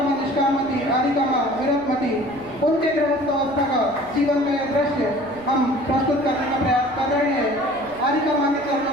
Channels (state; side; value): noise; right; rumble, 23 dB below the sound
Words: माँ निष्कामती, आरिका माँ विरतमती, उनके गृहस्थ अवस्था का जीवन का यह दृश्य हम प्रस्तुत करने का प्रयास कर रहे हैं। आरिका माँ के